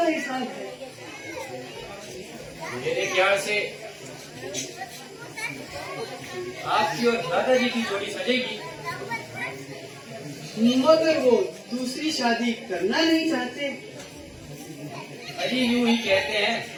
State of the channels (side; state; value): both; identical; correlation 1.00